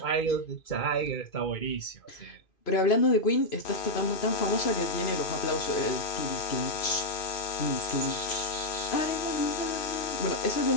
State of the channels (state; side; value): late; right; 2.5 ms